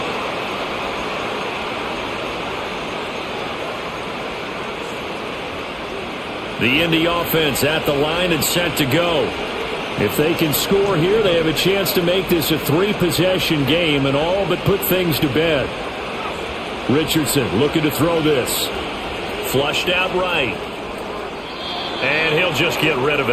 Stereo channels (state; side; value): identical; both; correlation 1.00